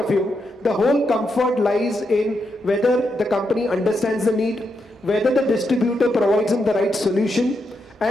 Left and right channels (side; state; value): both; normal; correlation 0.83